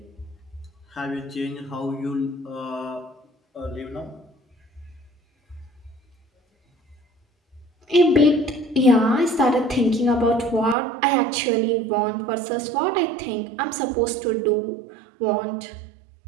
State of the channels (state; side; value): drops out; left; at 10.8 s